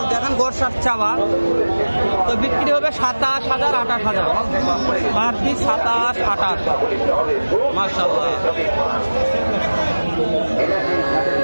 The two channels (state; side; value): inverted; both; correlation -1.00